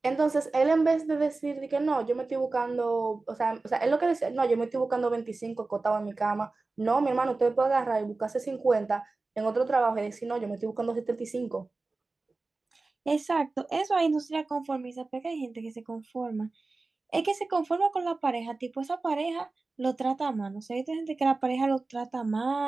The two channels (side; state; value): left; quieter; 3.5 dB